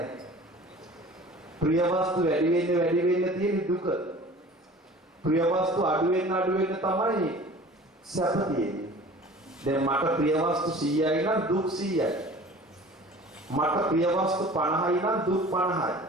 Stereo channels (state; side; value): normal; both; correlation 0.44